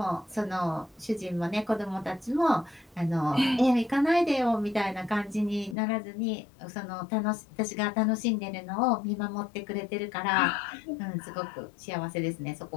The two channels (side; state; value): right; drops out; at 5.8 s